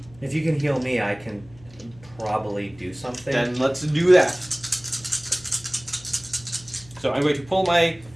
If you can heal me, I can probably do something. Then let's do that. So I'm going to pull my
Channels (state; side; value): noise; left; hum, 24 dB below the sound